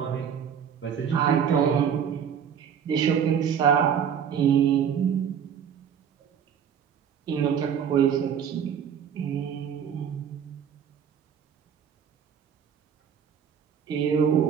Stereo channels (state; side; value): quieter; left; 8.0 dB